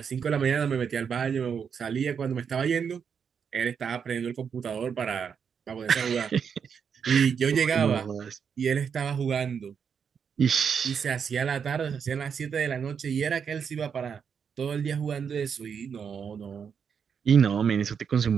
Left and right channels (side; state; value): left; quieter; 6.9 dB